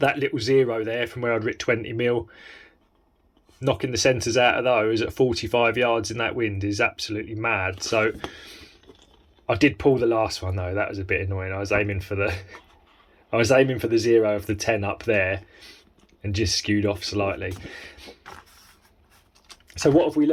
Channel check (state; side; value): identical; both; correlation 1.00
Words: little zero there from where I'd rit 20mm, knocking the centres out of those at 45 yards in that wind is absolutely mad. So I did pull the last one though, that was a bit annoying. I was aiming for the zero of the 10 up there and just skewed off slightly. So what have we